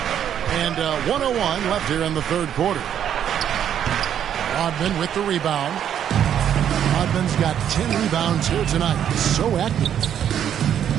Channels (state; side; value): quieter; left; 9.5 dB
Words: And 1:01 left here in the third quarter. Rodman with the rebound. Rodman's got 10 rebounds here tonight. He's so active.